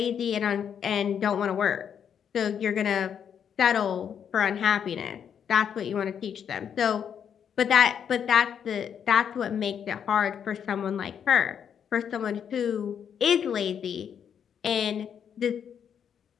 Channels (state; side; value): quieter; right; 8.1 dB